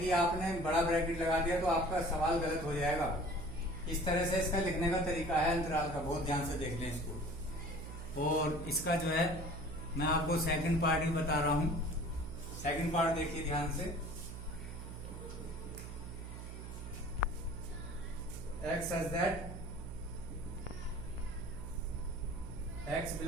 आपने बड़ा ब्रैकेट लगा दिया तो आपका सवाल गलत हो जाएगा। इस तरह से इसका लिखने का तरीका है अंतराल का, बहुत ध्यान से देख लें इसको। और इसका जो है मैं आपको सेकंड पार्ट ही बता रहा हूं। सेकंड पार्ट देखिए ध्यान से। x such that x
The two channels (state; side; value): noise; right; hum, 9 dB below the sound